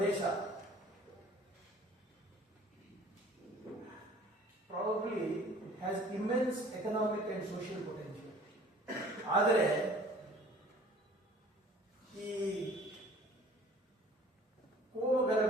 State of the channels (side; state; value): both; normal; correlation 0.51